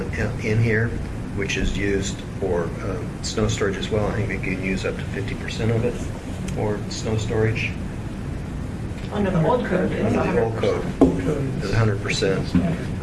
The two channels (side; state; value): both; identical; correlation 1.00